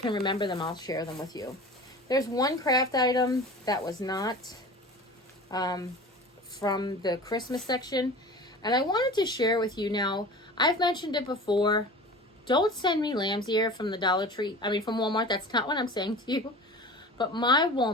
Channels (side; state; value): both; normal; correlation 0.37